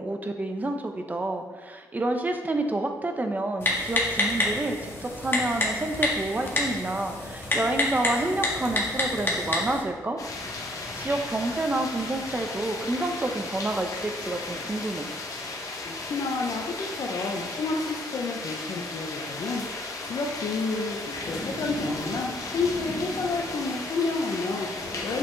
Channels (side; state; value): both; normal; correlation 0.63